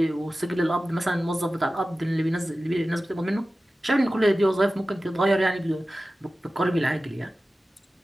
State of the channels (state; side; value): normal; both; correlation 0.95